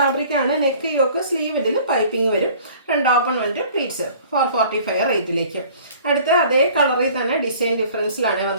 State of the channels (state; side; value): inverted; both; correlation -0.50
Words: ആണ്. നെക്ക് യോക്ക് സ്ലീവ് ഇതിൽ പൈപ്പിംഗ് വരും. ഫ്രണ്ട് ഓപ്പൺ വന്നിട്ട് പ്ലീറ്റ്സ് 445 റേറ്റിലേക്ക്. അടുത്ത അതേ കളറിൽ തന്നെ ഡിസൈൻ ഡിഫറൻസിലാണ്